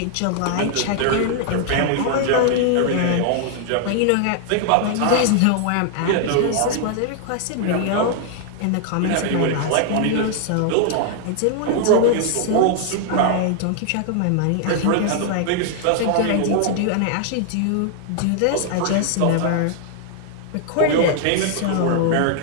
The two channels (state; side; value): different; both; correlation 0.00